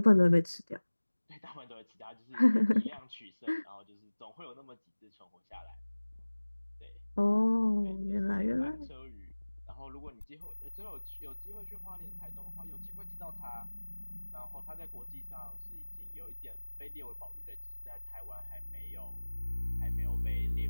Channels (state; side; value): inverted; both; correlation -1.00